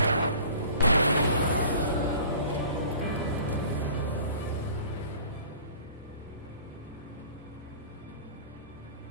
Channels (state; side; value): inverted; both; correlation -0.45